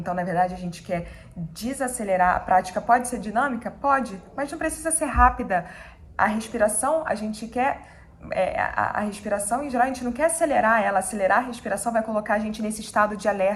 na verdade a gente quer desacelerar. A prática pode ser dinâmica? Pode, mas não precisa ser rápida. A respiração, a gente quer, a respiração em geral, a gente não quer acelerar ela. Acelerar a respiração vai colocar a gente nesse estado de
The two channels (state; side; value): identical; both; correlation 1.00